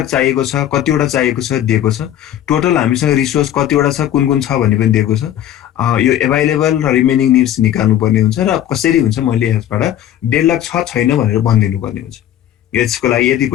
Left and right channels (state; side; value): quieter; right; 11.5 dB